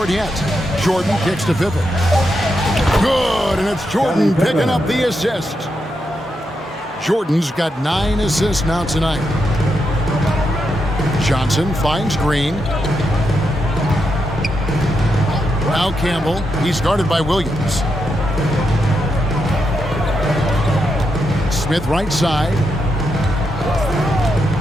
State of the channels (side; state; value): both; normal; correlation 0.84